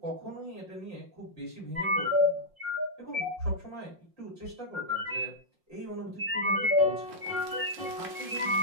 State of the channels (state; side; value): late; left; 5.6 ms